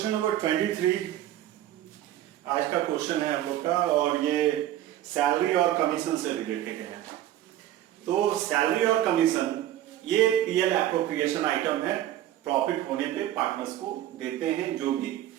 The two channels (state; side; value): quieter; left; 12.8 dB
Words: number 23 आज का question है हम लोग का, और ये सैलरी और कमीशन से रिलेटेड है। तो सैलरी और कमीशन ये पीएल एप्रोप्रिएशन आइटम है, प्रॉफिट होने पे पार्टनर्स को देते हैं जो भी